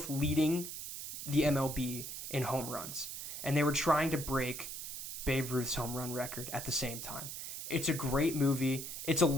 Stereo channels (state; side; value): noise; right; hiss, 7 dB below the sound